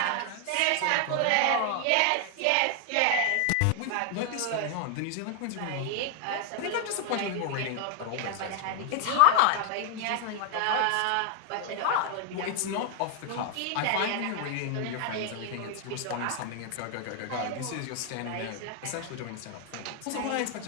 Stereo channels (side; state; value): both; different; correlation 0.00